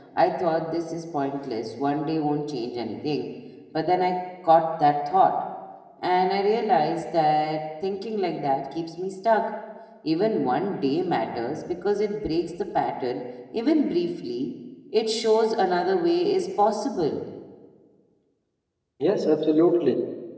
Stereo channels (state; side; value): identical; both; correlation 1.00